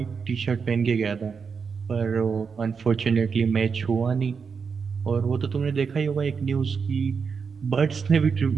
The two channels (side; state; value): left; quieter; 5.8 dB